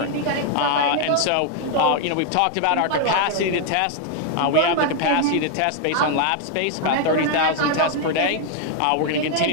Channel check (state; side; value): different; both; correlation 0.00